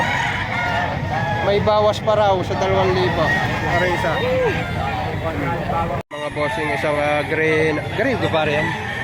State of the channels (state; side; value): identical; both; correlation 1.00